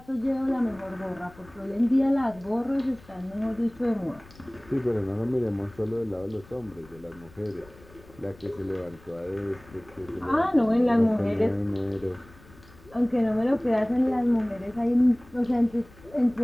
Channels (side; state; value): left; noise; rumble, 24 dB below the sound